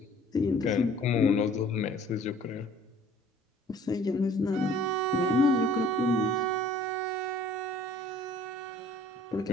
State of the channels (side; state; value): both; normal; correlation 0.53